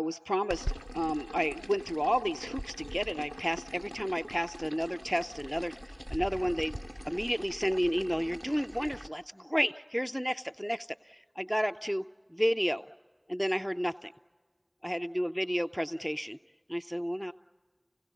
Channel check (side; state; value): both; identical; correlation 1.00